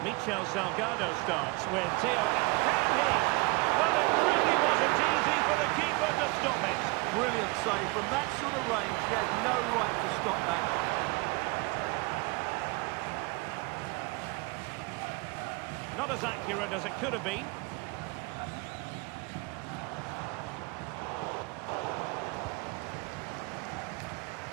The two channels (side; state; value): left; quieter; 26.3 dB